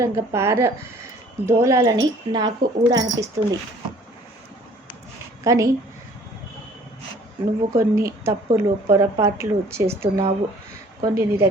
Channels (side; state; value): both; normal; correlation 0.54